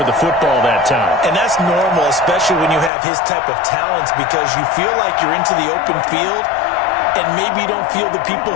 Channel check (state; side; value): drops out; right; at 2.9 s